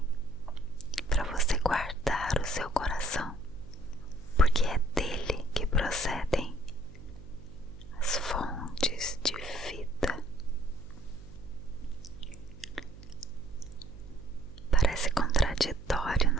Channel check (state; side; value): noise; right; hum, 18 dB below the sound